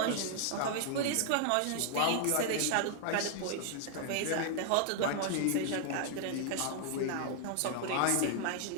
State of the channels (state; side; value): different; both; correlation 0.00